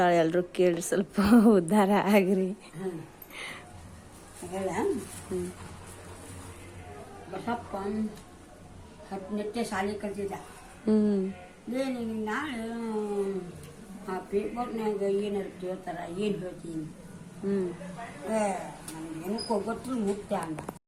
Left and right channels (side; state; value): both; identical; correlation 1.00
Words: ಎಲ್ಲರೂ ಕೇಳಿ ಸ್ವಲ್ಪ ಉದ್ಧಾರ ಆಗ್ರಿ. ಬಸಪ್ಪ 10ನೇ ಶಾಲೆ ಕಲ್ತಿದ್ದ. ಏನು ನಾಳೆ ಆ ಪೇಪರ್ನಾಗ ಏನಾರು ಕೇಳ್ತಾರ, ಏನು ಹೇಳ್ತೀನಿ ನನಗೇನಕ್ಕೋ ಗೊತ್ತು ಮುಕ್ತ ಅಂದ.